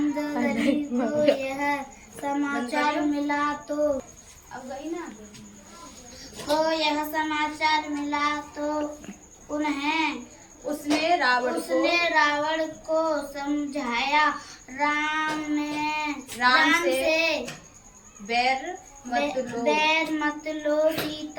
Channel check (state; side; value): identical; both; correlation 1.00